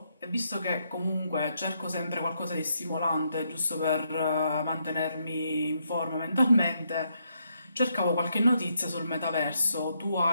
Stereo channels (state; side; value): inverted; both; correlation -0.77